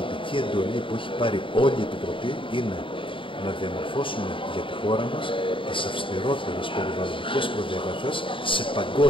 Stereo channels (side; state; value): right; late; 0.25 ms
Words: εντολή που έχει πάρει όλη η Επιτροπή είναι να διαμορφώσουμε για τη χώρα μας τις αυστηρότερες περιβαλλοντικές προδιαγραφές σε